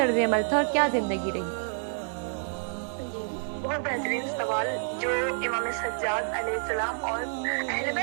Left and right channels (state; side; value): silent; left; 57 dB below the other